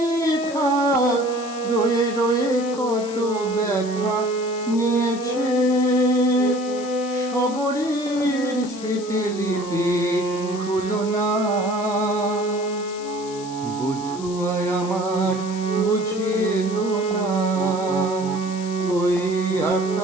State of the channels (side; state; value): left; noise; hiss, 16 dB below the sound